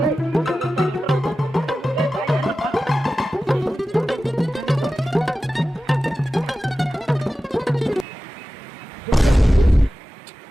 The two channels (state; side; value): normal; both; correlation 0.94